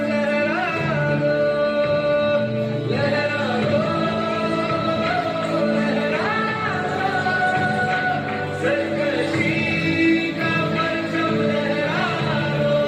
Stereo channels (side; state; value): both; identical; correlation 1.00